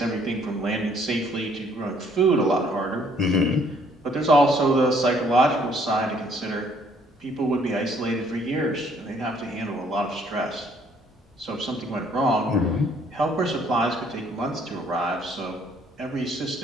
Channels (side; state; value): both; normal; correlation 0.63